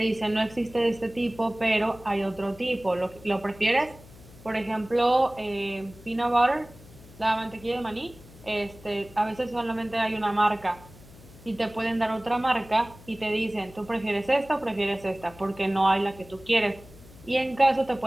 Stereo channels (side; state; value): left; noise; hum, 21 dB below the sound